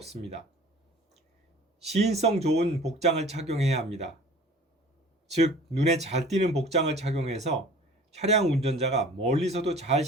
시인성 좋은 복장을 착용해야 합니다. 즉, 눈에 잘 띄는 복장을 착용해서 차량 운전자가 멀리서도 잘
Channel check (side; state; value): both; normal; correlation 0.46